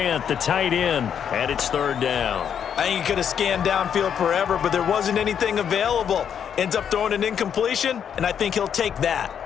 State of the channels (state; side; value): quieter; right; 8.2 dB